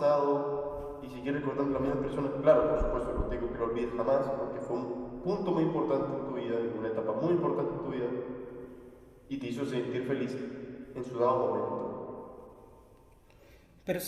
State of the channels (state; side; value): identical; both; correlation 1.00